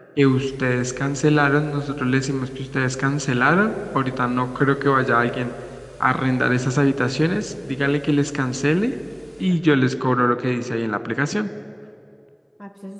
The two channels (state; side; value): identical; both; correlation 1.00